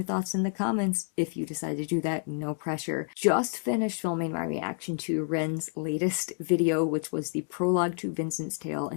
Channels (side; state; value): right; silent; 58 dB below the other